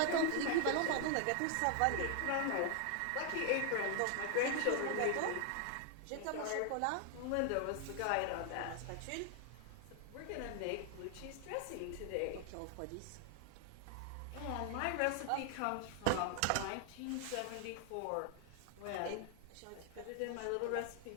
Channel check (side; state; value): both; different; correlation 0.00